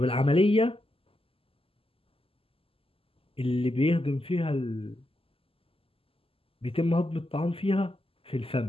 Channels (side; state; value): right; late; 0.27 ms